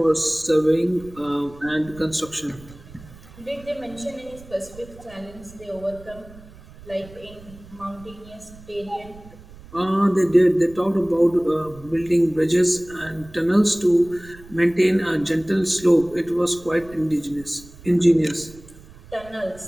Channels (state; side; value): noise; right; rumble, 21 dB below the sound